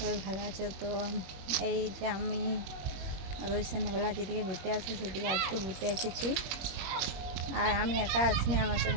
ভালো আছো। তো এই যে আমি রোজ সন্ধ্যাবেলা যেদিকে ঘুরতে আসি সেদিকে আজকে ঘুরতে এসেছি। আর আমি একা আসিনি, আমার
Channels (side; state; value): left; late; 21 ms